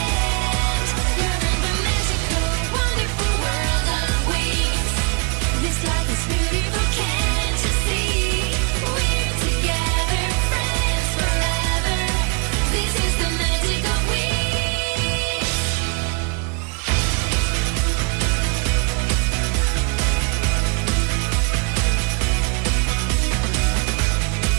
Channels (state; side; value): quieter; left; 31.9 dB